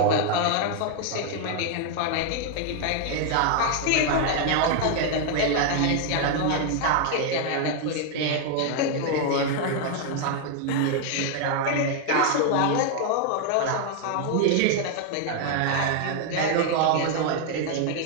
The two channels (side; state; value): both; different; correlation 0.00